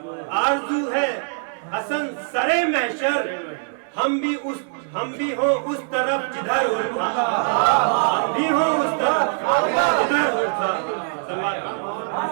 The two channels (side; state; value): left; silent; 62 dB below the other